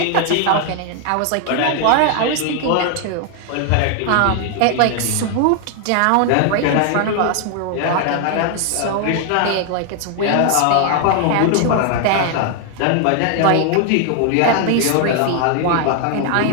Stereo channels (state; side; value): different; both; correlation 0.00